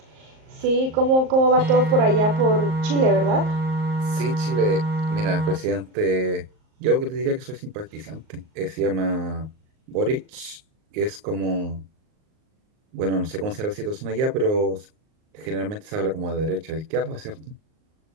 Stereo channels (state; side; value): late; left; 38 ms